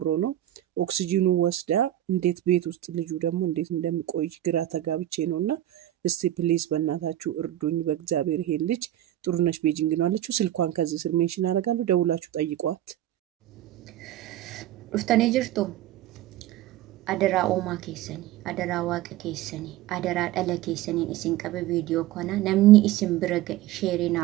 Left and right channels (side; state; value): left; quieter; 13.4 dB